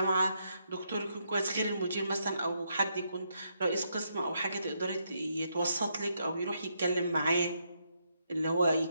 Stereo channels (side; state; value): both; inverted; correlation -0.78